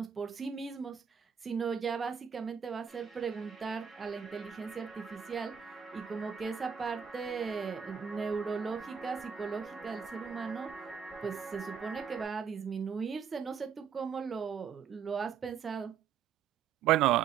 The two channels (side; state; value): left; quieter; 7.2 dB